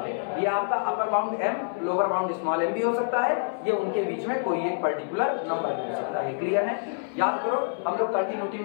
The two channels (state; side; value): silent; right; 58 dB below the other